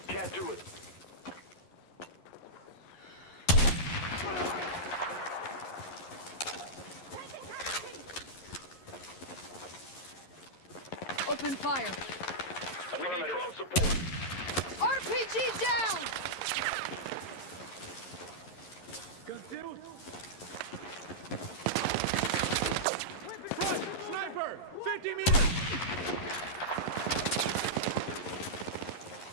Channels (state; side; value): late; right; 11 ms